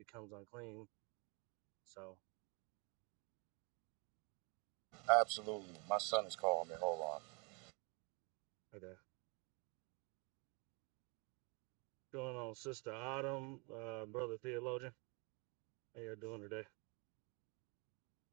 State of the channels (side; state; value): left; quieter; 31.9 dB